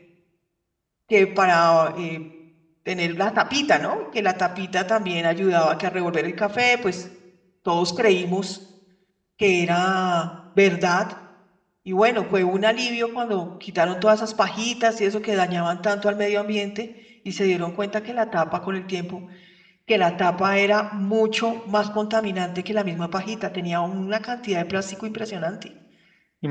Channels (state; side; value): identical; both; correlation 1.00